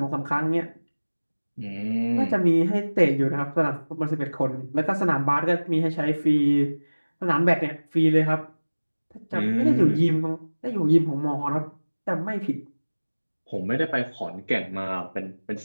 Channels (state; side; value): inverted; both; correlation -1.00